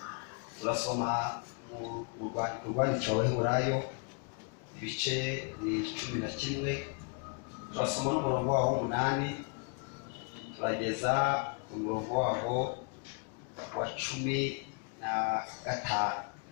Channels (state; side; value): quieter; right; 36.5 dB